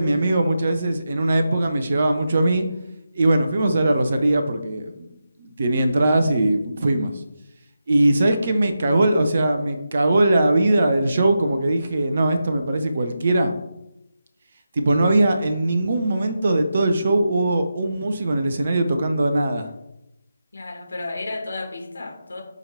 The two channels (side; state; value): both; inverted; correlation -0.89